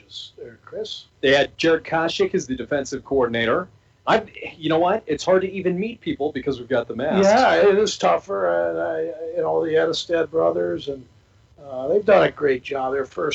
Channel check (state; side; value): identical; both; correlation 1.00